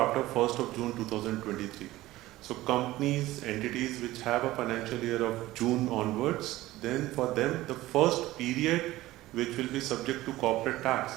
1st of June 2023. So companies, entities which have a financial year of June onwards, then for them, the first period which will be subject to corporate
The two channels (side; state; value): left; quieter; 17.0 dB